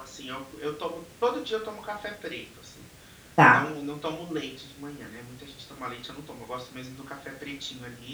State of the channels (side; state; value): both; identical; correlation 1.00